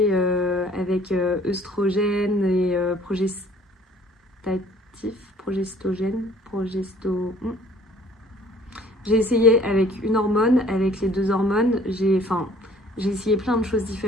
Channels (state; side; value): normal; both; correlation 0.55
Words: avec œstrogène et J'ai essayé avec une hormone, avec les 2 hormones. J'ai essayé plein de choses